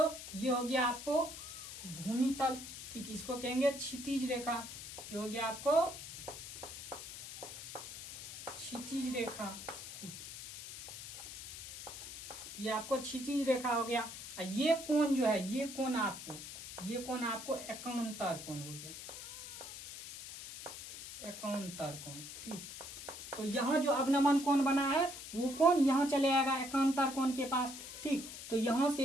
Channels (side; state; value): left; noise; hiss, 10 dB below the sound